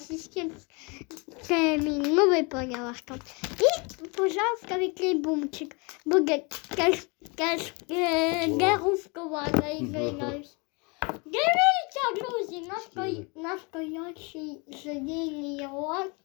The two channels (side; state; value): right; quieter; 30.5 dB